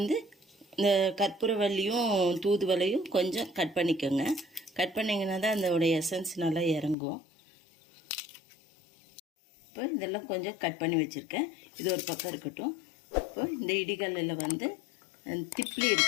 இந்த கற்பூரவள்ளியும் தூதுவளையும் கொஞ்சம் கட் பண்ணிக்கோங்க. கட் பண்ணிங்கன்னா தான் அதோட எசன்ஸ் நல்லா இறங்கும். இப்போ இதெல்லாம் கொஞ்சம் கட் பண்ணி வச்சுருக்கேன். இது ஒரு பக்கம் இருக்கட்டும். இப்போ இந்த இடிகல்லில் திப்ளி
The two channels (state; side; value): drops out; right; at 7.0 s